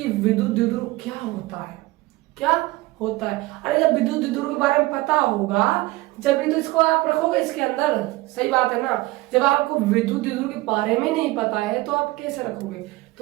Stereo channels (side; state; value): left; quieter; 20.0 dB